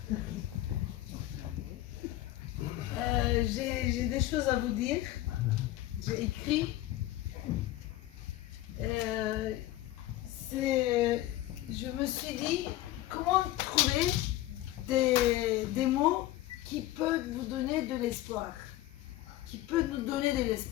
J'ai des choses à vous dire. J'ai écrit. Je me suis dit, comment trouver des mots qui peuvent vous donner de l'espoir, qui peuvent nous donner de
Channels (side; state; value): right; quieter; 15.4 dB